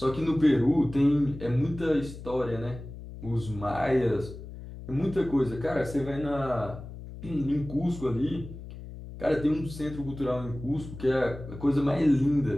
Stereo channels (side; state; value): left; noise; hum, 12 dB below the sound